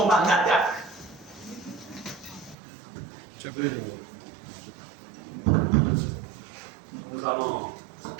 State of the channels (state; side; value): drops out; left; at 2.6 s